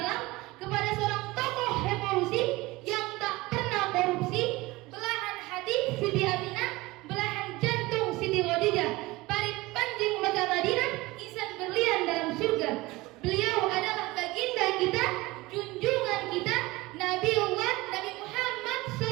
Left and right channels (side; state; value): left; quieter; 20.8 dB